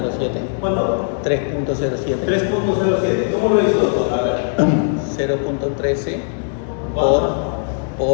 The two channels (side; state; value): right; silent; digital silence